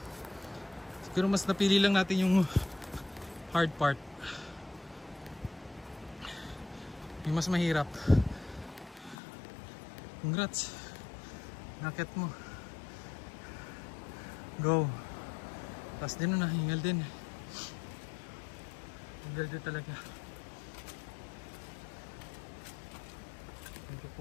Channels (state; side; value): drops out; right; at 9.2 s